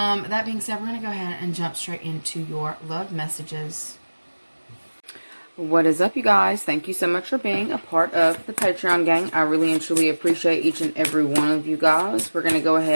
being said, we're going to go ahead and jump straight into your love messages. What is up, you guys? Thank you so much for being a part of the Patreon gang. I really and truly appreciate each and every one of you guys. We're going to go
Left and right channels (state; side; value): inverted; both; correlation -1.00